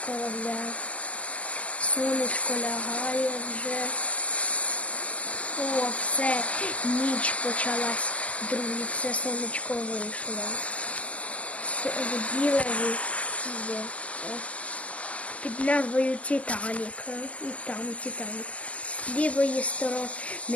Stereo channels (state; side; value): late; right; 0.064 ms